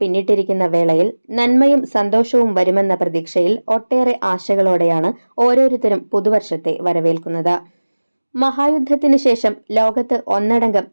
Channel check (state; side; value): inverted; both; correlation -1.00